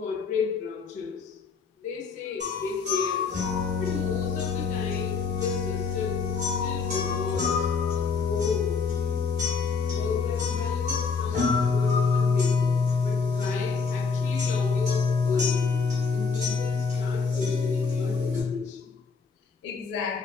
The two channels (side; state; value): right; quieter; 5.1 dB